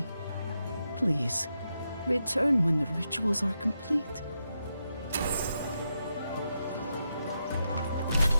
Please, return when the rituals are complete.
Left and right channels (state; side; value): inverted; both; correlation -0.85